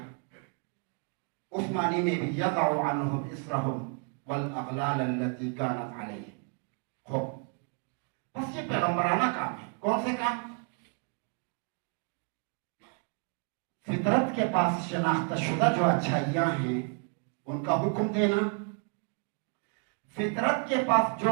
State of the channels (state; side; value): quieter; left; 40.0 dB